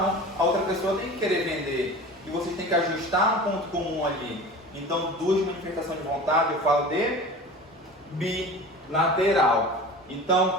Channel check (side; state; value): both; normal; correlation 0.36